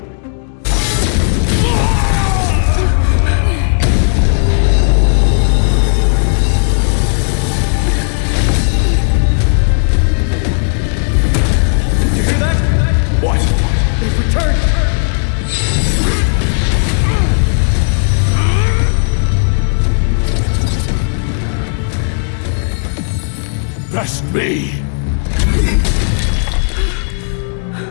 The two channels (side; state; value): right; silent; digital silence